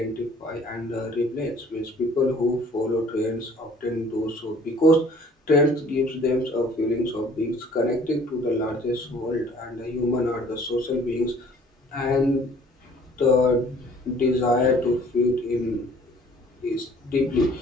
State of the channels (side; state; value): both; normal; correlation 0.54